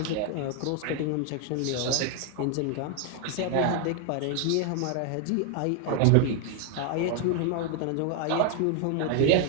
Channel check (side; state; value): both; different; correlation 0.01